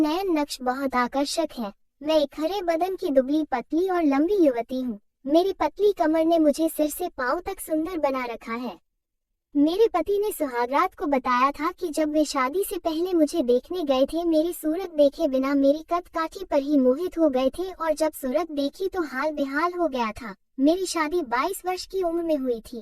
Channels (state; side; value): identical; both; correlation 1.00